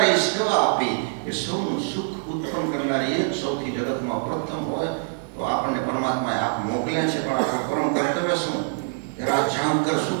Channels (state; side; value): silent; left; digital silence